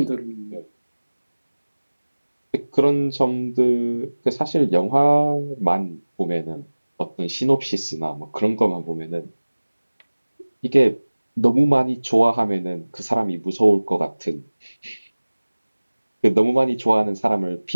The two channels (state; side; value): inverted; both; correlation -1.00